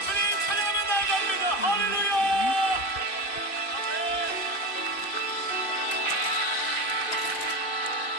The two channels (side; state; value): right; late; 2.5 ms